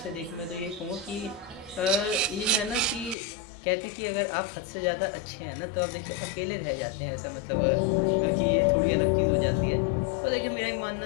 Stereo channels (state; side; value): drops out; right; at 3.2 s